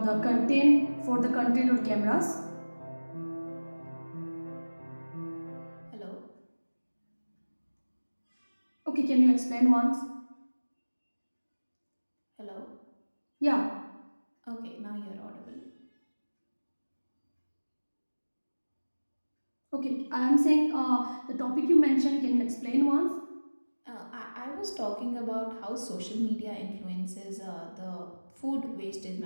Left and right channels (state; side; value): inverted; both; correlation -1.00